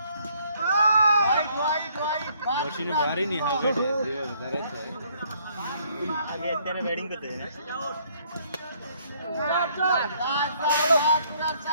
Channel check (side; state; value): both; inverted; correlation -0.65